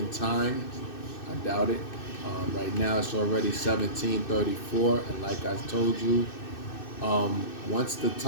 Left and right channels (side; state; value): right; late; 2.6 ms